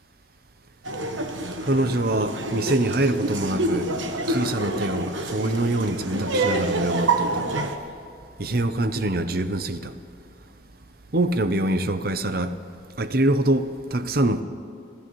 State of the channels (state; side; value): normal; both; correlation 0.42